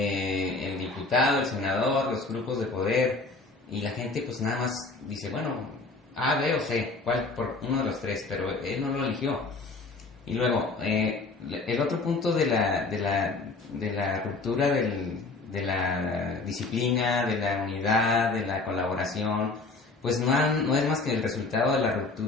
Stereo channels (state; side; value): quieter; right; 3.6 dB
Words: diputado, el senador, los grupos de poder, y la gente pues nada más dice, bueno, A, B o C, cuál por uno de los tres, pero él no lo eligió. Y luego, el otro punto de la ruptura de la disciplina, de la unidad, de la colaboración, pues no es más que el resultado de la